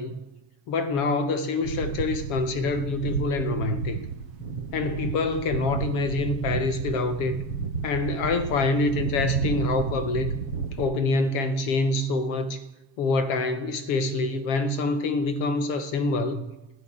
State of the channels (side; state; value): right; late; 7.3 ms